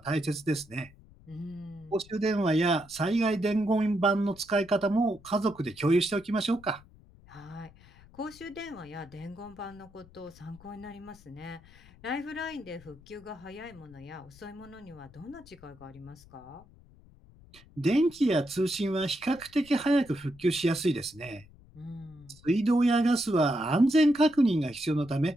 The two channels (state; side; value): noise; left; rumble, 24 dB below the sound